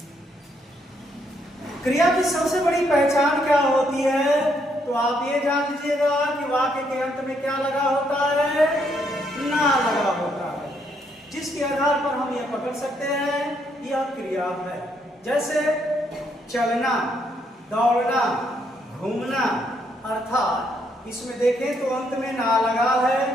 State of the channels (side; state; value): both; normal; correlation 0.73